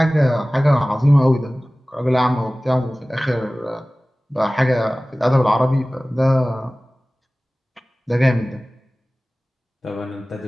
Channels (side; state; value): both; normal; correlation 0.98